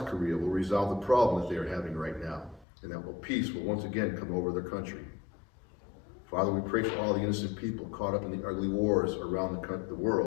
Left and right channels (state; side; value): drops out; right; at 2.7 s